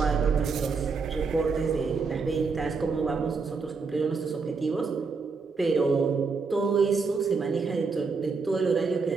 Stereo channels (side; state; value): left; quieter; 4.7 dB